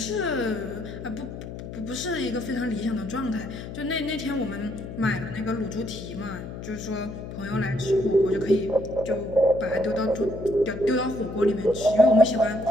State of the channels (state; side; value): noise; left; hum, 10 dB below the sound